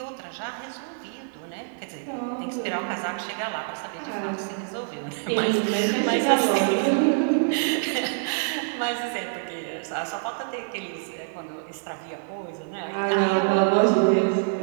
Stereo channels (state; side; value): silent; left; digital silence